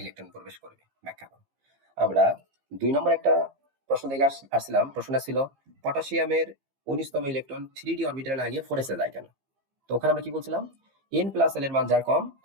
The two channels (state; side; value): late; left; 15 ms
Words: ইলেকট্রন প্রবেশ করবে ব্যাখ্যা করো। আমরা 2 নম্বর একটা প্রশ্ন দেখে আসছিলাম, প্রশ্নটা ছিল পটাশিয়ামের 19তম ইলেকট্রন 3d অরবিটালে না গিয়ে 4s এ যায় কেন? তো ওখানে আমরা কি বলছিলাম? n+l এর মান যার কম